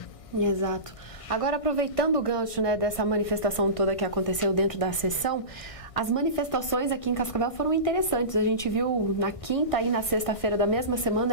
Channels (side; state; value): right; late; 1.6 ms